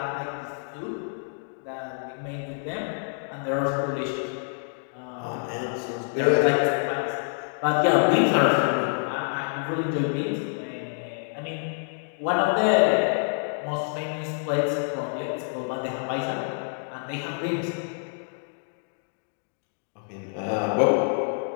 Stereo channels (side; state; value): right; silent; digital silence